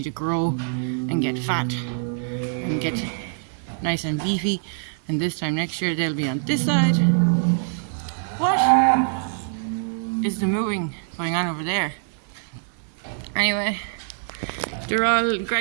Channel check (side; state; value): left; silent; 62 dB below the other